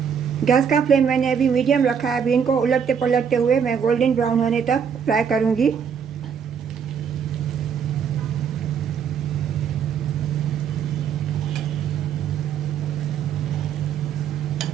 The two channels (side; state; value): left; quieter; 7.3 dB